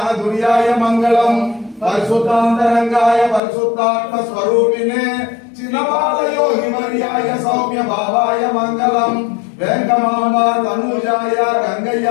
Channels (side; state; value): right; drops out; at 3.4 s